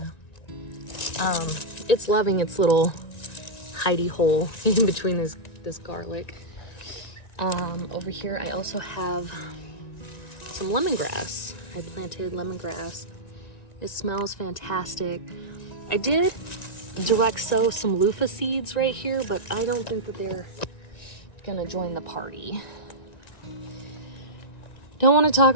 It's loving its little hidey hole in between this garlic. Over here I also have some lemongrass. I planted lemongrass. It smells fantastic. I did direct sow some loofah seeds right here, but I don't think that they're gonna join the party. Don't want to talk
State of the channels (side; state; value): right; late; 1.9 ms